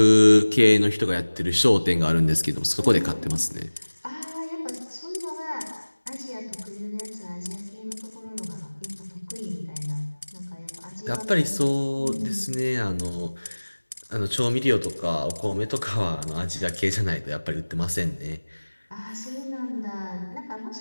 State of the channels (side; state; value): both; inverted; correlation -1.00